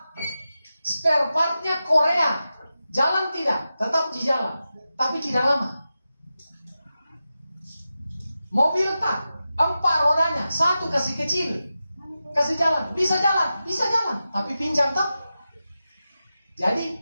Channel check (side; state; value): both; inverted; correlation -0.92